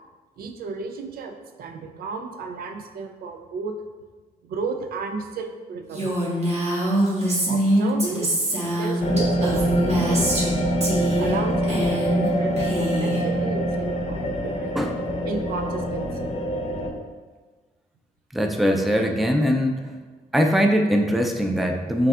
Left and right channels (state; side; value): normal; both; correlation 0.71